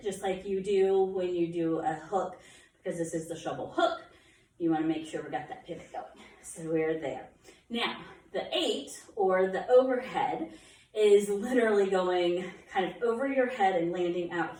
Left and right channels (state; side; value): identical; both; correlation 1.00